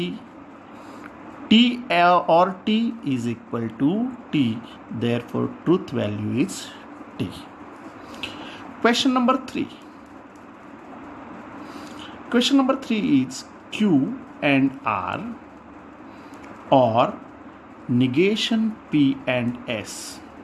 T or T is equal to T, therefore truth value is T. Question number 3. Question number 3 is Q and R or negation P and S.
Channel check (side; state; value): both; identical; correlation 1.00